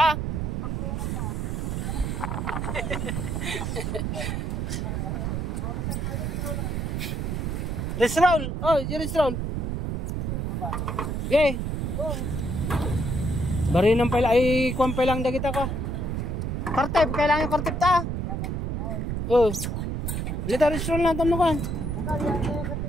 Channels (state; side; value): noise; right; rumble, 1 dB below the sound